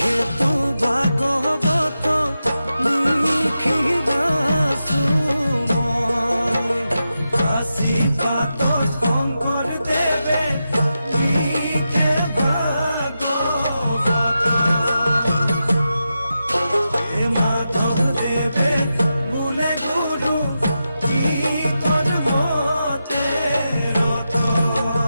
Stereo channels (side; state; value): both; inverted; correlation -0.89